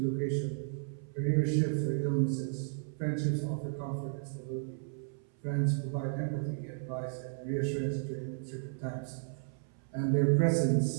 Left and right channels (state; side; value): silent; left; 55 dB below the other